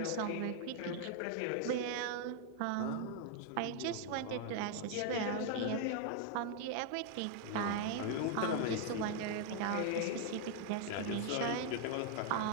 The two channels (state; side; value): different; both; correlation 0.00